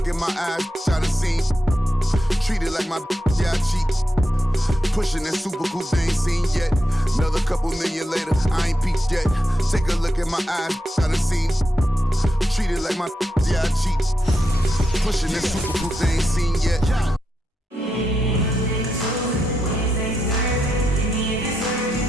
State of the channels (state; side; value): normal; both; correlation 0.85